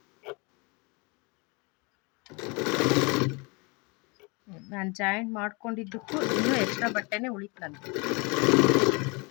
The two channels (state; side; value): quieter; right; 29.3 dB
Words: ನಾನು ಜಾಯಿಂಟ್ ಮಾಡ್ಕೊಂಡಿದ್ದಕ್ಕೂ ಇನ್ನೂ ಎಕ್ಸ್ಟ್ರಾ ಬಟ್ಟೆನೇ ಉಳಿತು ನನಗೆ.